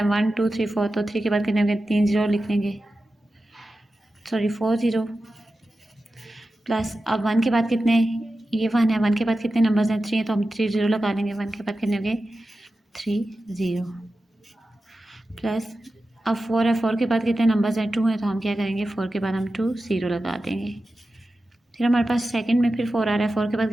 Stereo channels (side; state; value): both; normal; correlation 0.93